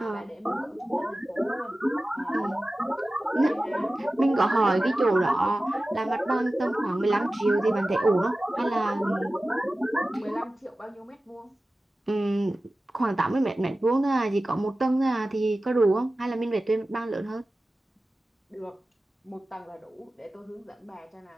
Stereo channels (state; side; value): normal; both; correlation 0.95